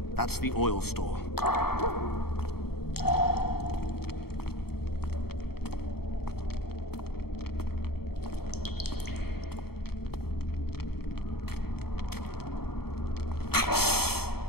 That's the oil store.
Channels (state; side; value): late; right; 0.95 ms